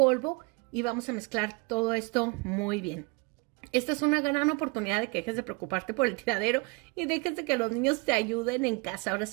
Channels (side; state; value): left; quieter; 29.6 dB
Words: y vamos a mezclar todo esto muy bien. Esta es una gran oportunidad de que dejes de preocuparte por el tiradero y dejes de que los niños te ayuden en casa. Ahora